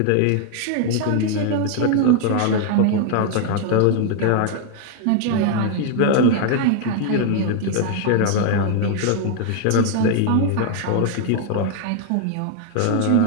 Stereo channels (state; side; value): different; both; correlation 0.00